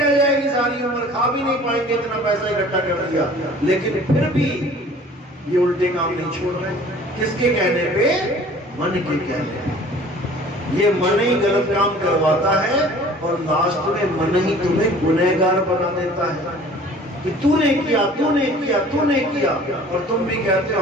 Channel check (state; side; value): normal; both; correlation 0.48